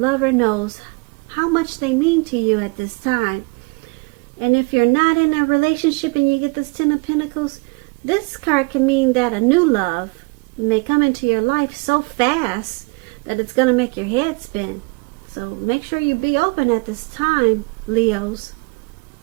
knows how much they mean to you at this time. And if you're not in a relationship and you get this Ten of Pentacles, this card can mean that a new love may come into your life so fast that it's going to make your head spin. So make sure you be open at this time, Leos.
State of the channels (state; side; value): quieter; left; 30.9 dB